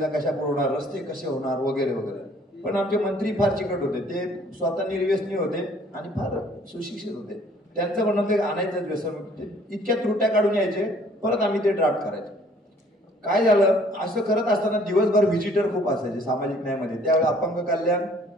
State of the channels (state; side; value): normal; both; correlation 0.58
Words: कशा पुरवणार, रस्ते कसे होणार, वगैरे वगैरे. पण आमचे मंत्री फार चिकट होते, ते स्वतः निर्व्यसनी होते आणि फार सुशिक्षित होते. त्यांचं म्हणणं ते आणायचं व्यसनमुक्ती, इतक्या त्रुट्या काढून यायचे, परत आम्ही ते ड्राफ्ट करायचो. काय झालं, असं करत असताना दिवसभर व्हिजिटर खूप असायचे सामाजिक न्यायामध्ये. त्यावेळी अपंग कल्याण